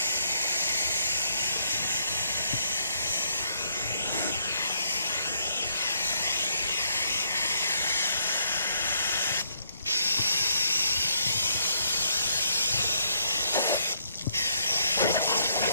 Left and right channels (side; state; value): both; inverted; correlation -0.72